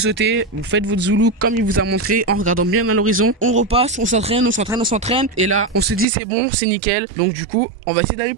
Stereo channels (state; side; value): drops out; left; at 6.1 s